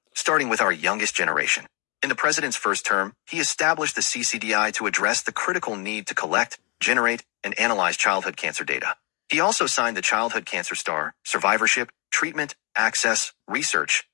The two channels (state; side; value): quieter; right; 31.7 dB